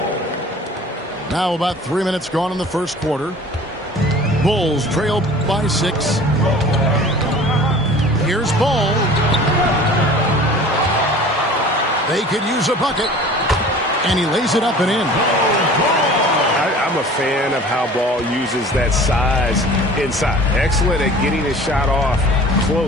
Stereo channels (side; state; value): both; normal; correlation 0.44